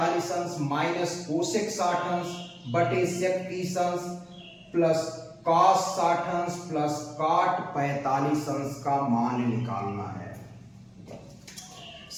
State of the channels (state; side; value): identical; both; correlation 1.00